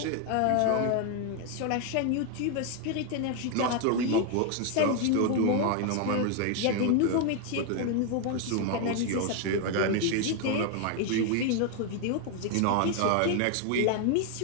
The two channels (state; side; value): different; both; correlation 0.01